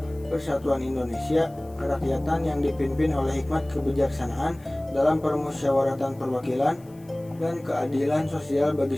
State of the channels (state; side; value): noise; left; hiss, 28 dB below the sound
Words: persatuan Indonesia, kerakyatan yang dipimpin oleh hikmat kebijaksanaan dalam permusyawaratan perwakilan, dan keadilan sosial bagi